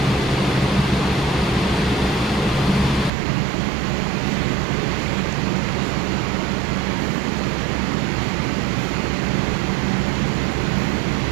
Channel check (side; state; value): left; drops out; at 3.1 s